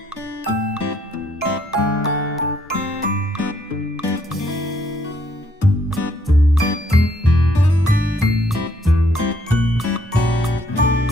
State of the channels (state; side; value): normal; both; correlation 0.68